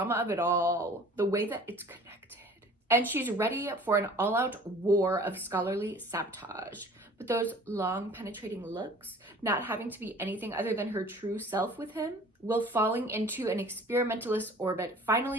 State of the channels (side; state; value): both; normal; correlation 0.48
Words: of it all, the way that it's connected. And she's ready for an all-out war of scholarly sabotage. But those long penetrating looks, not having to be anything other than her true self with him, will falling into an experimentalist orbit